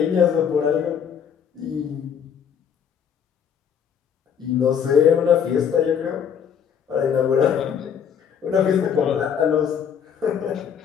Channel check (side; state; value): right; quieter; 7.9 dB